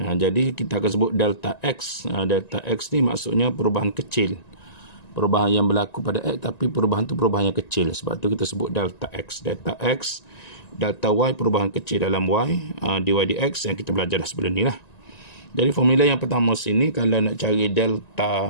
kita akan sebut delta X. Delta X ni maksudnya perubahan kecil. Perubahan yang berlaku pada X, tapi perubahan tu perubahan yang kecil. Sebab tu kita sebut delta X. Delta X, delta Y perubahan kecil dalam Y, dy dx yang kita belajar dah sebelum ni lah. Jadi formula yang pertama sini, kalau nak cari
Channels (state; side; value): late; right; 1.9 ms